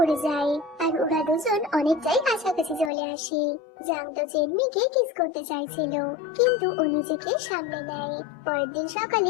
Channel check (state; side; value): drops out; right; at 2.9 s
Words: যায়, আর ওরা দুজন অনেকটাই কাছাকাছি চলে আসে। জাং তো চেনমিকে কিস করতে চাইছিল, কিন্তু ও নিজেকে সামলে নেয়। পরের দিন